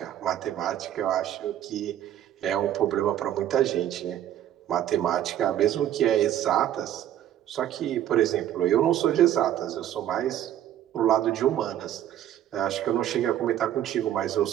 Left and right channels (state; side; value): quieter; left; 11.5 dB